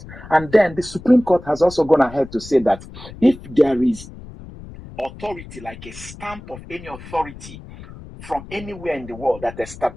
And then the Supreme Court has also gone ahead to say that if there is authority, like a stamp of any authority from anywhere in the world that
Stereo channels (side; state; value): left; noise; rumble, 16 dB below the sound